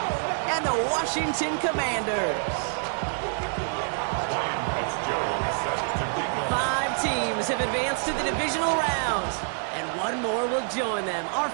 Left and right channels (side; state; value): left; silent; 60 dB below the other